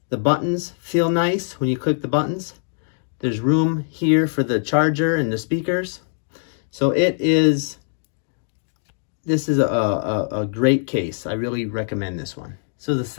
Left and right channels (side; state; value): right; silent; digital silence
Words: The buttons feel nice when you click the buttons. There's room here for the charger and the speakers. So this is a great case. I really recommend this one. So